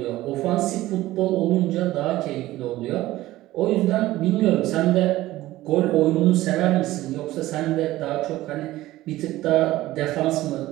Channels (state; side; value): quieter; left; 16.4 dB